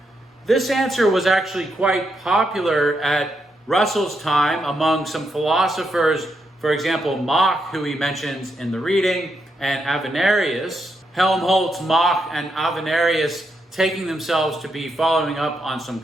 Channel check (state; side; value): normal; both; correlation 0.81